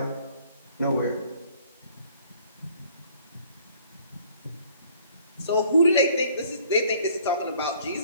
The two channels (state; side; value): inverted; both; correlation -0.57